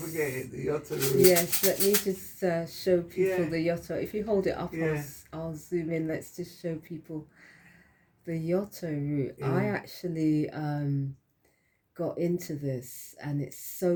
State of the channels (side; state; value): both; identical; correlation 1.00